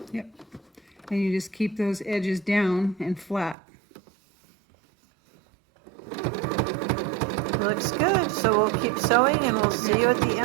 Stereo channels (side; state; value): left; drops out; at 3.6 s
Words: Yep. And you just keep those edges down and flat. Looks good. So we'll keep sewing and we'll see you at the